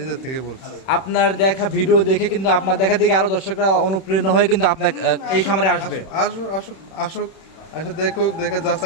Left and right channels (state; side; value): late; right; 31 ms